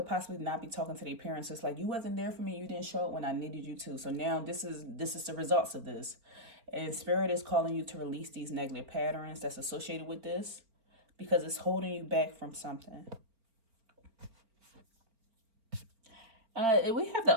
possibly not be talking to their parents. It's like, you wasn't there for me. You didn't show up when I needed you to. So now this is the results of this. And Spirit is calling you to release these negative patterns that's associated with this, because it's holding you back from something. We have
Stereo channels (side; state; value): left; late; 4.4 ms